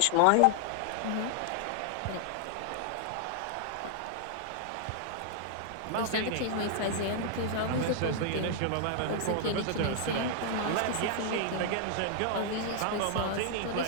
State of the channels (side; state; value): both; different; correlation 0.00